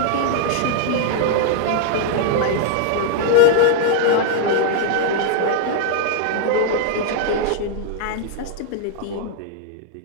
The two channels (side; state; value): both; different; correlation -0.01